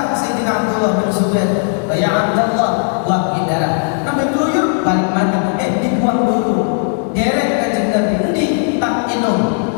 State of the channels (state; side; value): silent; right; 62 dB below the other